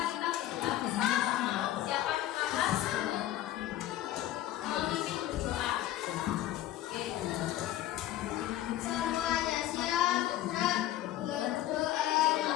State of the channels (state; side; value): quieter; right; 13.5 dB